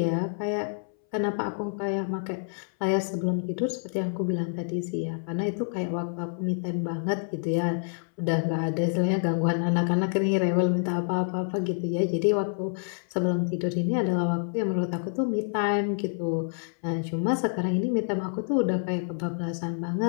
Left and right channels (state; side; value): silent; right; 60 dB below the other